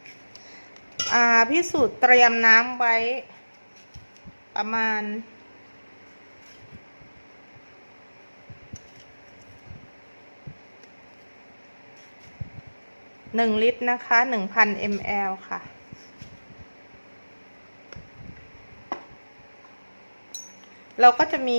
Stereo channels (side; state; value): both; inverted; correlation -1.00